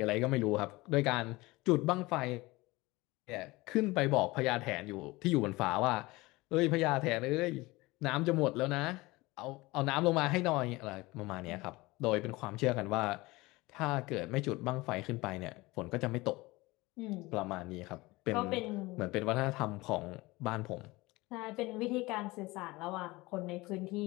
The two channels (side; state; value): right; quieter; 21.6 dB